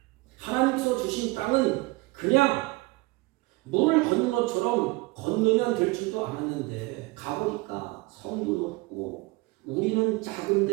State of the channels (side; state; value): left; quieter; 23.2 dB